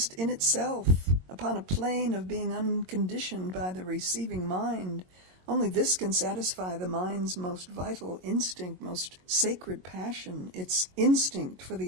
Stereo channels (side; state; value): left; late; 22 ms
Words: in itself, upon a plane of being unconditioned by the receiving mind. Only this can satisfy the mind's most vital instinct, most sacred passion, its instinct for